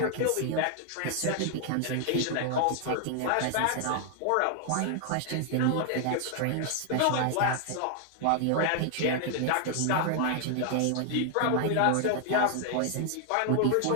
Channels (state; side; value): different; both; correlation 0.00